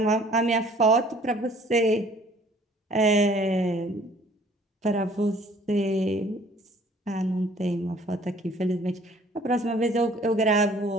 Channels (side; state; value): both; normal; correlation 0.55